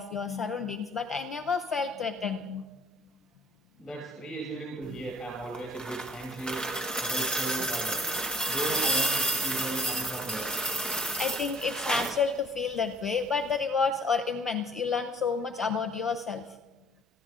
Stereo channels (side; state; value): both; normal; correlation 0.56